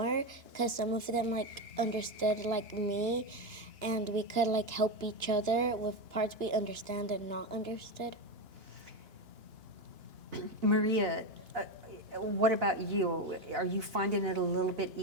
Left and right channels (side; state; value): left; late; 2.9 ms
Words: because some of them understood me, and we could help each other with parts we understand and not understood. Maria, what about you? Are you finding it a little bit